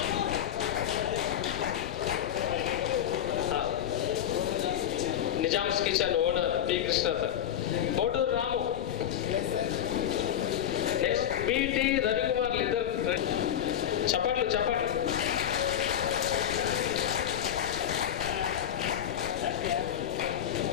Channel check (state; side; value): quieter; right; 10.3 dB